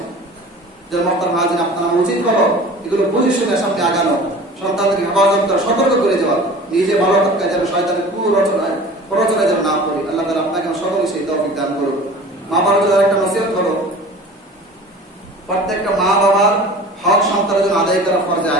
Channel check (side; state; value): both; normal; correlation 0.41